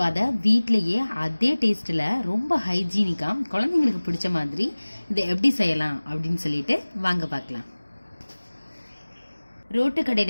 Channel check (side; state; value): both; inverted; correlation -1.00